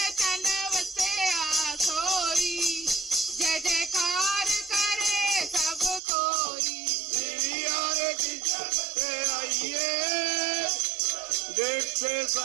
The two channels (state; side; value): drops out; left; at 6.0 s